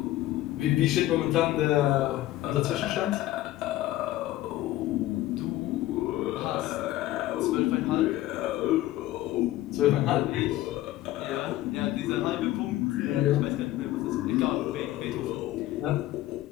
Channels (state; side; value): quieter; right; 15.3 dB